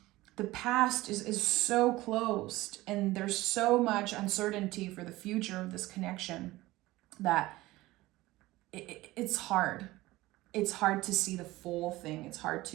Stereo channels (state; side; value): quieter; left; 18.4 dB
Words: The past is so closed, and there's so much uncertainty for the future of this connection that it's hard. It's hard to see the full thing. It's hard